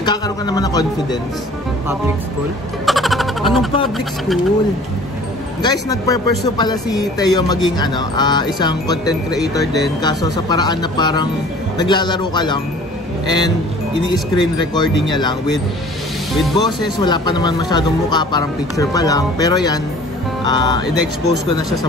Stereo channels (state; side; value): normal; both; correlation 0.48